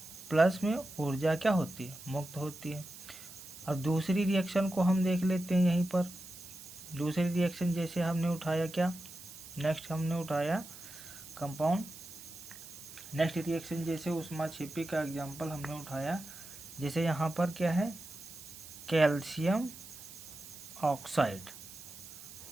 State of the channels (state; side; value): noise; right; hiss, 15 dB below the sound